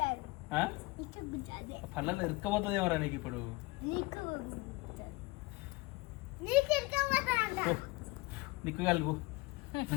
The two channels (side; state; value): right; quieter; 23.6 dB